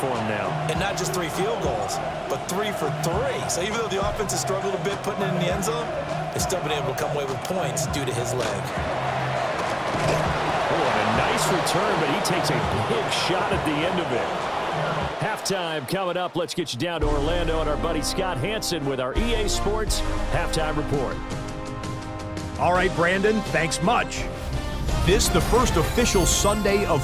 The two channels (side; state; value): both; identical; correlation 1.00